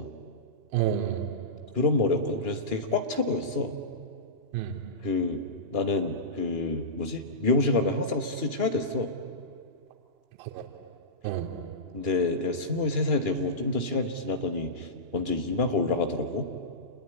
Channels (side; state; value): left; late; 2.9 ms